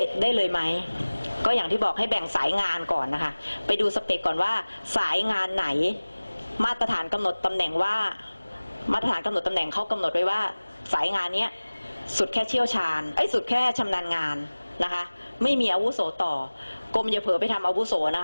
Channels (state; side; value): inverted; both; correlation -1.00